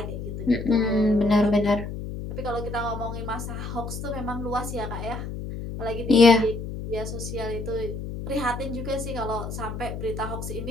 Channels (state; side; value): noise; left; hum, 7 dB below the sound